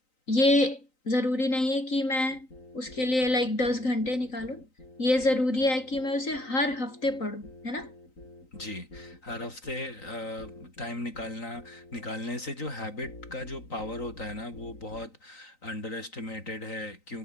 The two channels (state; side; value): late; right; 3.9 ms